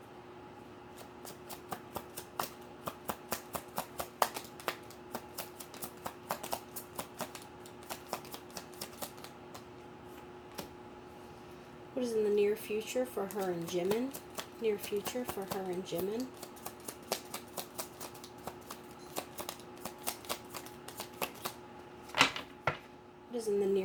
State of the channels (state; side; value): identical; both; correlation 1.00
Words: What is in the near future for her and Jimin? Near future for her and Jimin. What is in the